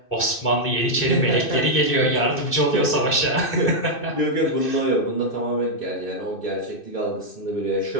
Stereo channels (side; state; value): right; late; 2.6 ms